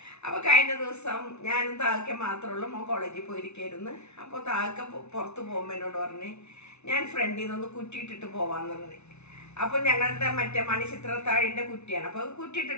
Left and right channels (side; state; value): right; late; 0.81 ms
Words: അപ്പൊ കഴിഞ്ഞ ദിവസം ഞാനും താഴെ മാത്രമുള്ള മോൻ കോളേജിൽ പോയിരിക്കായിരുന്നു. അപ്പോൾ താഴെ പുറത്ത് പോകുമ്പോൾ എന്നോട് പറഞ്ഞ് ഞാൻ ഫ്രണ്ടിൽ നിന്നൊന്ന് കുറ്റിയിട്ടിട്ട് പോവാന്ന് പറഞ്ഞു. അപ്പോൾ ഞങ്ങളുടെ മറ്റേ മണിച്ചിത്രത്താഴിൻ്റെ കുറ്റിയാണ്. അപ്പോൾ